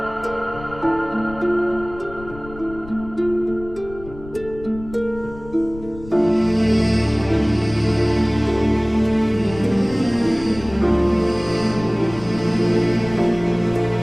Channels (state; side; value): noise; left; rumble, 16 dB below the sound